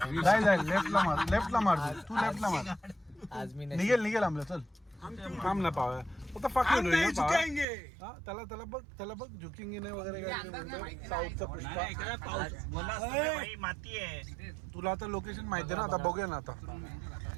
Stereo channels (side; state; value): left; drops out; at 7.7 s